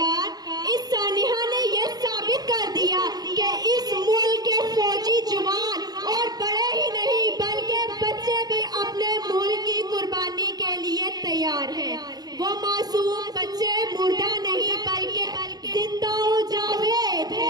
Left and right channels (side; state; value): left; late; 0.19 ms